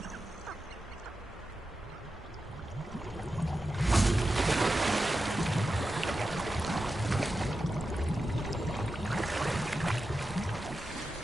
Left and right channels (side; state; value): both; normal; correlation 0.91